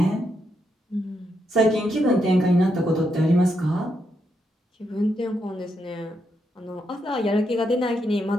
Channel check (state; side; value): normal; both; correlation 0.81